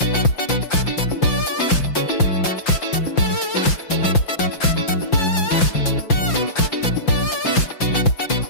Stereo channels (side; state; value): right; late; 5.8 ms